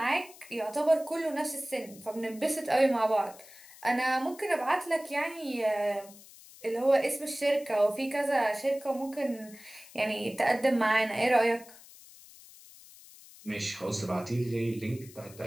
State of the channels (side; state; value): left; noise; hiss, 20 dB below the sound